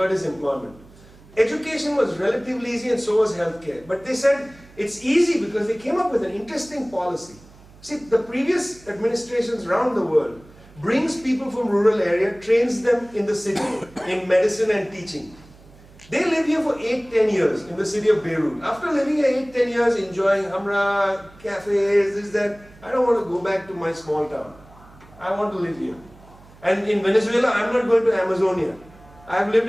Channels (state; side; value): noise; right; hum, 24 dB below the sound